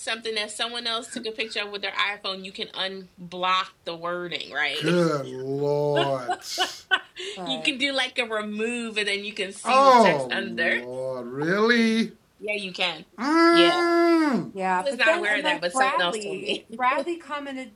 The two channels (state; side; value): identical; both; correlation 1.00